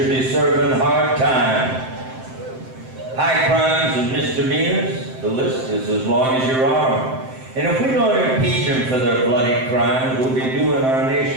be serving hard time. High crimes and misdemeanors, the list is as long as your arm. And if we don't impeach them for their bloody crimes, we'll be doing our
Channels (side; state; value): left; late; 7.7 ms